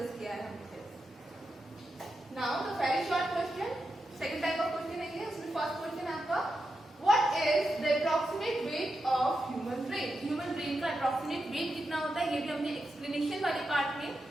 किया है हमने। Now the very short question, second type of question है ये। उसमें फर्स्ट क्वेश्चन है आपका, what is the approximate weight of human brain? Human brain का अप्रॉक्सीमेट वेट कितना होता है? ये भी हमने एक्सप्लेनेशन वाले पार्ट में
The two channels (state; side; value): normal; both; correlation 0.87